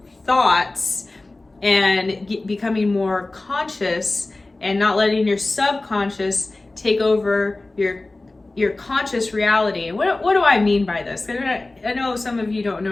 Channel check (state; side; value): quieter; right; 3.0 dB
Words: thoughts and becoming more conscious and not letting your subconscious take over your conscious reality. And what do I mean by this? I know some of you don't know